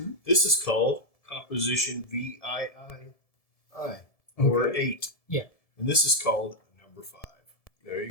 This is called composition VIII or Okay. 8. Yeah. And this is called number 5. There you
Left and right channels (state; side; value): late; right; 1.7 ms